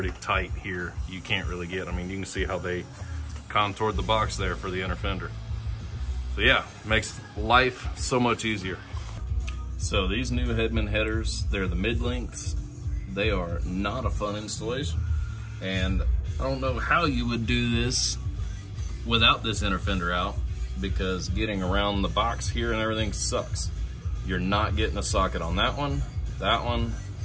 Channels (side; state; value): both; identical; correlation 1.00